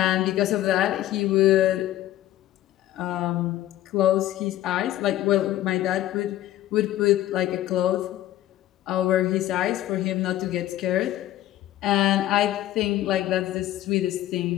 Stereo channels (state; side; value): quieter; right; 13.9 dB